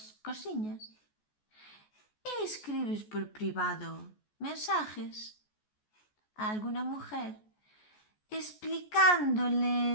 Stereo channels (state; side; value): late; right; 14 ms